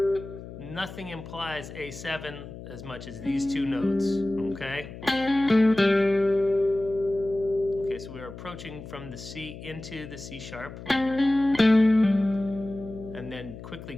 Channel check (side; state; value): left; noise; hum, 13 dB below the sound